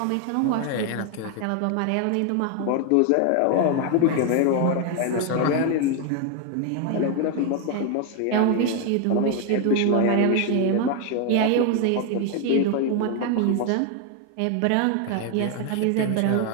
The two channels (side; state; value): both; different; correlation 0.01